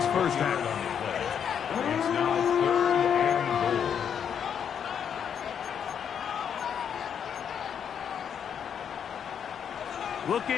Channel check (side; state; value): right; quieter; 8.0 dB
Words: 1st half. It's now 3rd and goal.